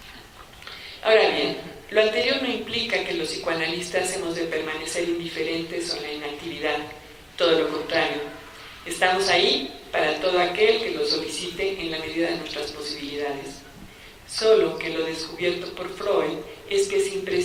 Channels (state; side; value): identical; both; correlation 1.00